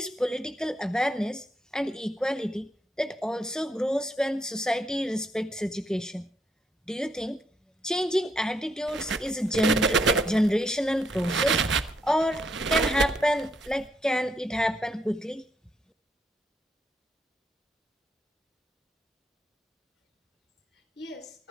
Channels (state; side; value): normal; both; correlation 0.75